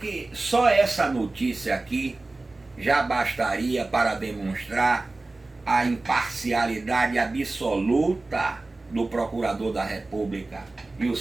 só essa notícia aqui já bastaria para demonstrar a imparcialidade absoluta do Procurador da República e o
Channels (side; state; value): left; quieter; 3.2 dB